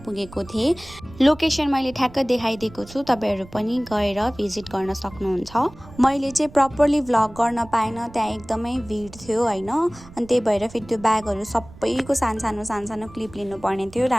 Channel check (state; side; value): noise; right; rumble, 19 dB below the sound